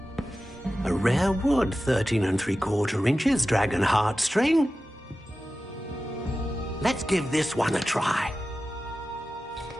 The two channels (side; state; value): both; normal; correlation 0.94